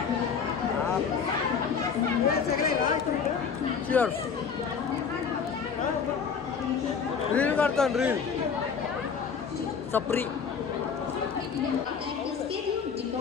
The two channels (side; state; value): right; quieter; 6.3 dB